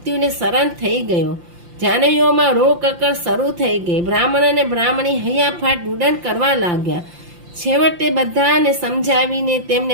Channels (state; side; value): late; left; 5.8 ms